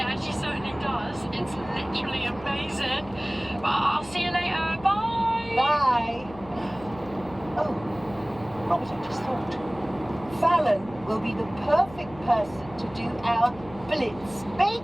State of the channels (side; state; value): left; noise; hum, 18 dB below the sound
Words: she certainly does. It's literally amazing. I'll see you later. Bye. Bye. Oh, Robert, I just thought. Fallon will be the perfect person to do our blitz